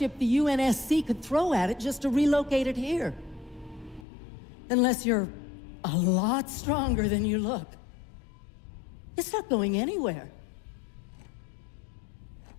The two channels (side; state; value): right; drops out; at 4.0 s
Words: the UNSC could throw at it just to relocate it here. Unless you're a lot stronger than you look. It's not going anywhere.